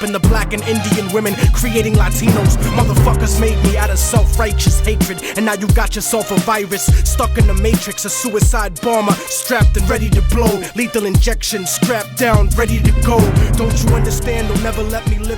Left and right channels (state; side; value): identical; both; correlation 1.00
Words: the black and Indian women, creating Latinos. Motherfuckers made me out of self-righteous hatred, and now you got yourself a virus, stuck in the matrix. A suicide bomber, strapped and ready to blow. Lethal injection, strapped down, ready to go. Don't you understand? They'll never let me